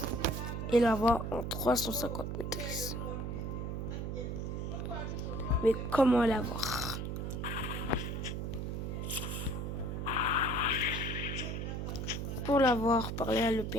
Et l'avoir en 350 maîtrises. Mais comment l'avoir? Pour l'avoir, parlez à le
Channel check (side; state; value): right; noise; hum, 3 dB below the sound